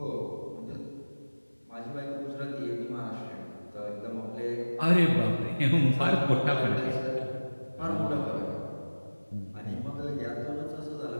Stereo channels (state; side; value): inverted; both; correlation -1.00